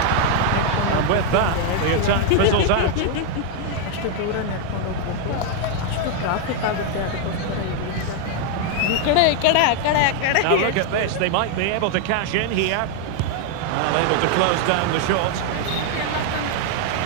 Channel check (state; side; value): different; both; correlation 0.00